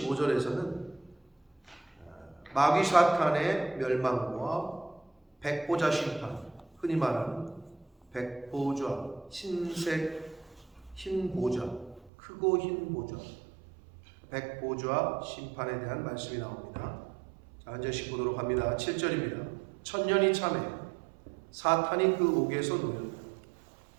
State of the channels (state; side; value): drops out; left; at 12.1 s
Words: 마귀 사탄의 멸망과 백보자 심판, 흔히 말하는 백보좌, 흰색 흰 보좌, 크고 흰 보좌, 백보좌 심판에 대한 말씀이 나옵니다. 자, 한 절씩 보도록 합니다. 7절입니다. 천년이 참해 사탄이 그 옥에서 놓였다.